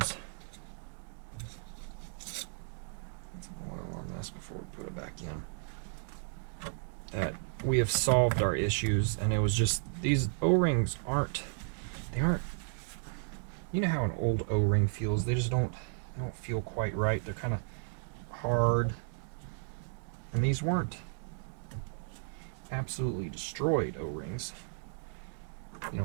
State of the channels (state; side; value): silent; left; digital silence